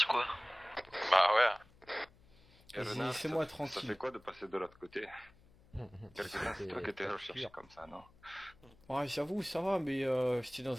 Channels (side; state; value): left; noise; hum, 27 dB below the sound